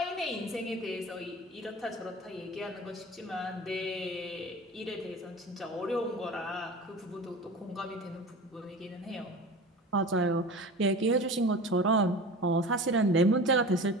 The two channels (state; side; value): normal; both; correlation 0.35